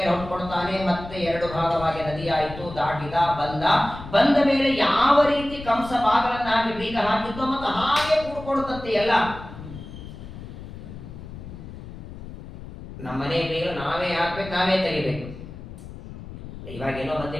ಹೊಟ್ಕೊಡ್ತಾನೆ. ಮತ್ತೆ ಎರಡು ಭಾಗವಾಗಿ ನದಿಯಾಯಿತು, ದಾಟಿದ, ಬಂದ ಮೇಲೆ ಯಾವ ರೀತಿ ಕಂಸ ಬಾಗಲನ್ನ ಹಾಕಿ ಬೀಗ ಹಾಕಿದ್ದು ಮತ್ತು ಹಾಗೆ ಕೂಡ್ಕೊಡುತ್ತಂತೆ ಎಲ್ಲ. ನಮ್ಮನೆ ಬೀಗ ನಾವೇ ಹಾಕ್ಬೇಕು, ನಾವೇ ತೆಗಿಬೇಕು. ಇವಾಗ ಏನೋ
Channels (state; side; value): noise; left; rumble, 13 dB below the sound